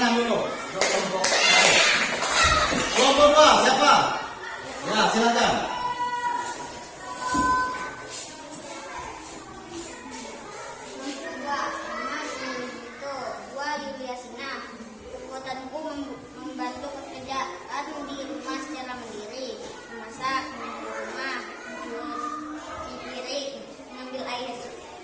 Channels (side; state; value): both; identical; correlation 1.00